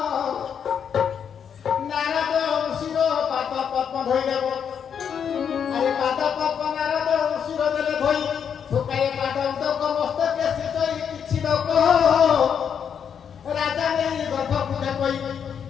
ନାରଦ ଋଷିର ପାଦ ପଦ୍ମ ଧୋଇଦେବ ଆରେ ପାଦ ପଦ୍ମ ନାରଦ ଋଷିର ଦେଲେ ଧୋଇ ଶୁକାଏ ପାଦ ଉଦକ ମସ୍ତକେ ସିଚଇ କିଛି ଲୋକ ରାଜା ନେଇ ଗର୍ଭ ପୂଜା କହି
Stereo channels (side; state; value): right; quieter; 7.7 dB